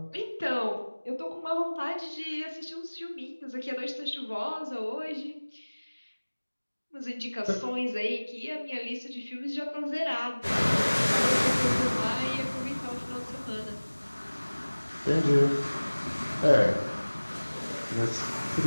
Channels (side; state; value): both; inverted; correlation -1.00